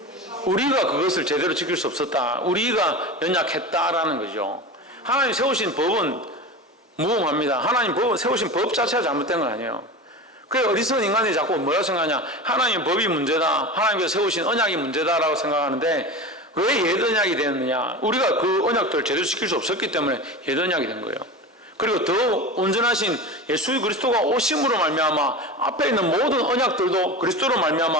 우리가 그것을 제대로 지킬 수 없었다, 우리가 연약했다라는 거죠. 하나님 세우신 법은 무음합니다. 하나님 세우신 법 자체가 잘못된 건 아니에요. 그래, 어리석은 인간이 자꾸 뭐라고 생각하냐? 하나님의 법이 문제다, 하나님께서 세우신 언약이 문제다라고 생각하는데, 왜 옛 언약이 되었느냐? 우리가 그 언약들을 제대로 지킬 수 없었기 때문에 옛 언약이 된 거예요. 그리고 더 온전하신 예수 그리스도가 오심으로 말미암아 앞에 있는 모든 언약들도 그리스도로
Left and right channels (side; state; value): both; normal; correlation 0.29